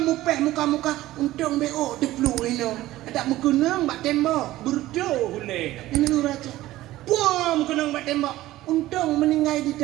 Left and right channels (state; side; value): quieter; left; 16.0 dB